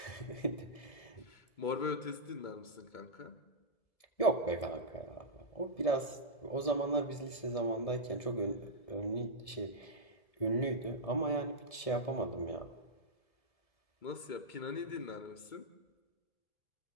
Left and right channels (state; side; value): late; right; 1.7 ms